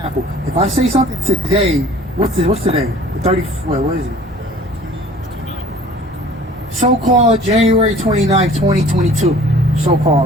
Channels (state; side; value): normal; both; correlation 0.49